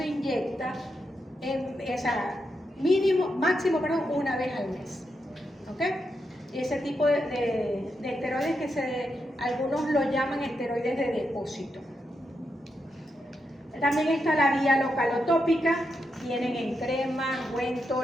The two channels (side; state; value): both; normal; correlation 0.84